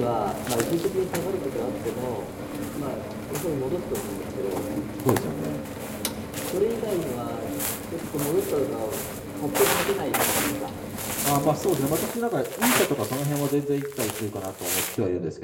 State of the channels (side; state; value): both; identical; correlation 1.00